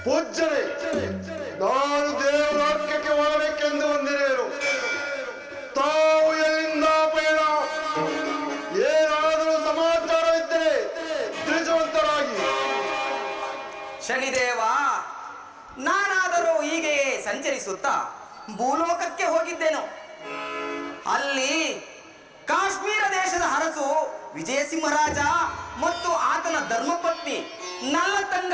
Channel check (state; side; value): identical; both; correlation 1.00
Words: ಪೂಜ್ಯರೇ, ನಾನು ದೇವರಾಜ್ಯಕ್ಕೆ ಹೋಗಬೇಕೆಂದು ಬಂದಿರುವೆನು. ತಾವು ಎಲ್ಲಿಂದ ಪಯಣ? ಏನಾದರೂ ಸಮಾಚಾರ ಇದ್ದರೆ ತಿಳಿಸುವಂತರಾಗಿ. ಶನಿದೇವ, ನಾನಾದರೂ ಹೀಗೆಯೇ ಸಂಚರಿಸುತ್ತಾ ಭೂಲೋಕಕ್ಕೆ ಹೋಗಿದ್ದೇನು. ಅಲ್ಲಿ ಕಾಶ್ಮೀರ ದೇಶದ ಅರಸು ವಿಜಯಸಿಂಹರಾಜ ಮತ್ತು ಆತನ ಧರ್ಮಪತ್ನಿ